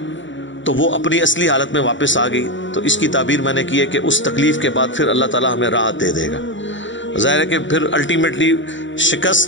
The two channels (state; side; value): late; right; 0.55 ms